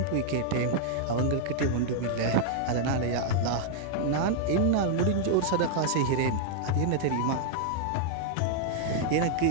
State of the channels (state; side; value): different; both; correlation -0.01